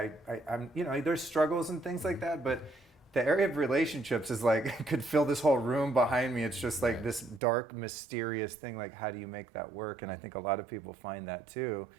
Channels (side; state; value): left; drops out; at 7.4 s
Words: there's struggles and things like that, but the area of relationships is like, could fill this whole room behind me. It's just like this dark, mysterious thing. Like, how do you make that work? And I think a lot of people find that too.